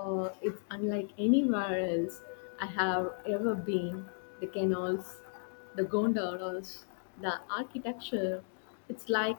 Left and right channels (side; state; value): right; silent; 55 dB below the other